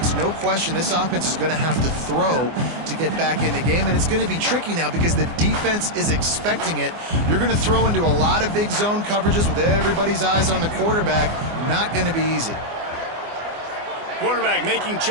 no question this offense is going to have to throw to get back in the game, and it's going to be tricky now because the defense is expecting it. You're going to throw into a lot of big zone coverages with everybody's eyes on the quarterback. Not going to be easy. Quarterback making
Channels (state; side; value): late; left; 24 ms